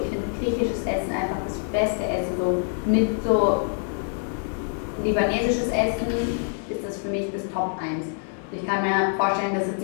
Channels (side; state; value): right; silent; 57 dB below the other